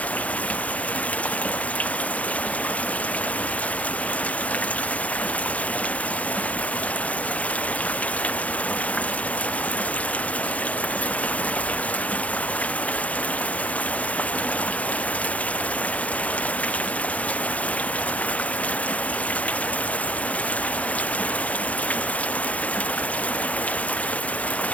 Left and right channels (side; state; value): right; late; 0.066 ms